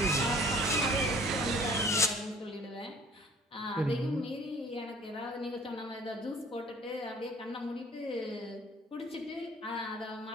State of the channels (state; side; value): normal; both; correlation 0.53